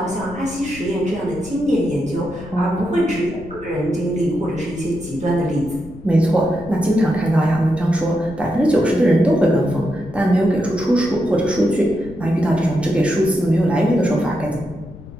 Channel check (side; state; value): left; noise; rumble, 16 dB below the sound